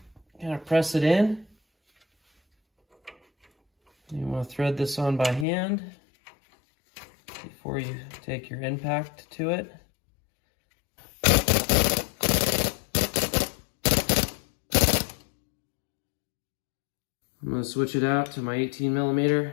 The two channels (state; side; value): drops out; right; at 5.5 s